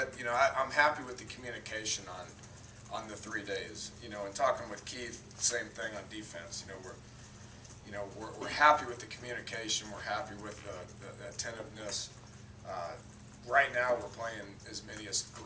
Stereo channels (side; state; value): both; identical; correlation 1.00